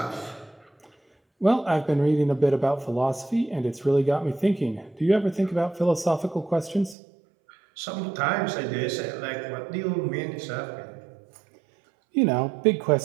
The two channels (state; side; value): drops out; left; at 7.0 s